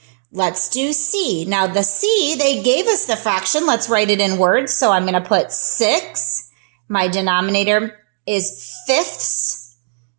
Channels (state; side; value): silent; left; digital silence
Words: Let's do C. Now the C, they gave us the fraction. Let's write it in words. So I'm going to put 6. My denominator is fifths.